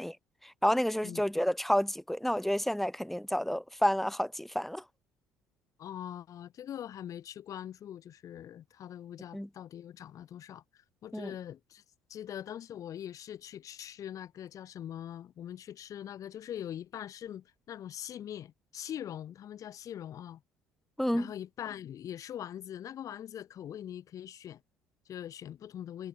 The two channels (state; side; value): normal; both; correlation 0.92